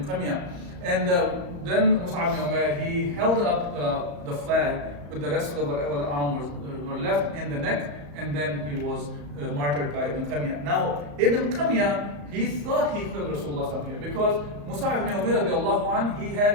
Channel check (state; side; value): late; left; 35 ms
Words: Qamiya. And then Mus'ab ibn Umair, he held up the flag with the rest of whatever the arm were left in the neck, and then he was martyred by Ibn Qamiya. Now, Ibn Qamiya, he thought he killed Rasulullah here because Mus'ab ibn Umair, he